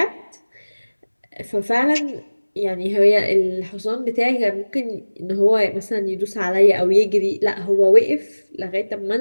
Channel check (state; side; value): inverted; both; correlation -1.00